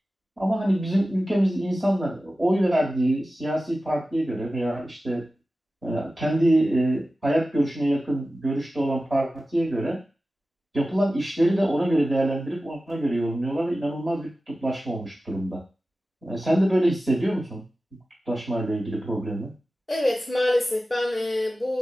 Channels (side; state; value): both; normal; correlation 0.95